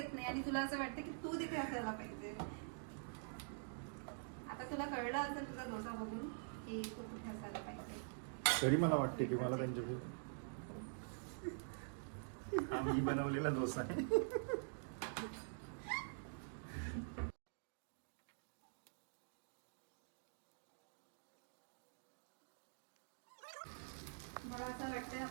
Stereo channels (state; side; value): silent; left; digital silence